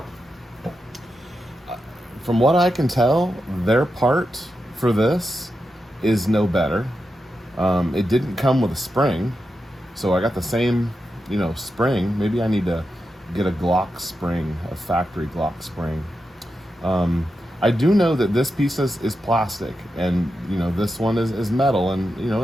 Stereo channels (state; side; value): normal; both; correlation 0.88